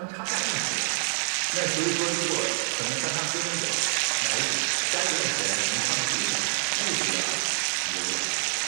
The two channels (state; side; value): silent; left; digital silence